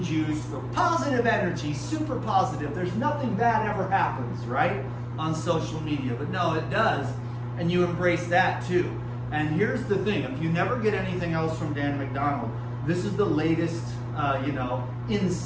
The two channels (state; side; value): identical; both; correlation 1.00